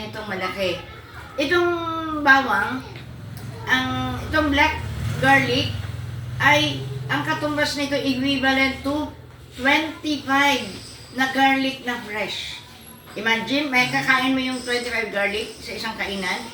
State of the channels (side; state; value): both; identical; correlation 1.00